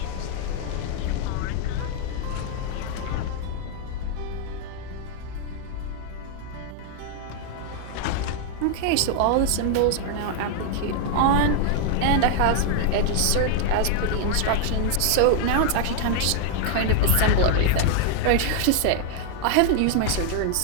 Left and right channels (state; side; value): different; both; correlation 0.00